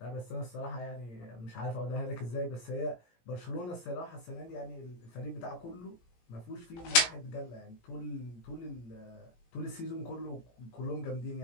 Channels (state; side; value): late; right; 17 ms